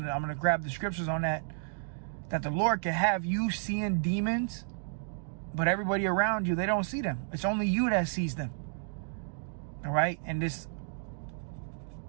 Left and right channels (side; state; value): left; silent; digital silence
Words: I'm going to grab the scriptures on that, that the Lord can have you seeing demons, but everybody around you, they don't see them. It's only you that sees them. All right, and this